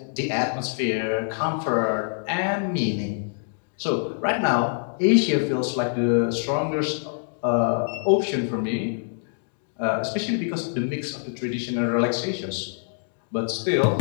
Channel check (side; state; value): right; silent; digital silence